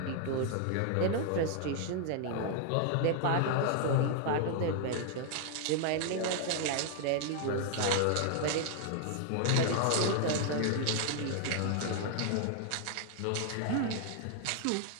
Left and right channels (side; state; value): both; different; correlation 0.00